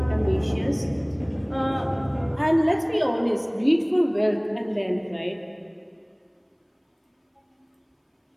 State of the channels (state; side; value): identical; both; correlation 1.00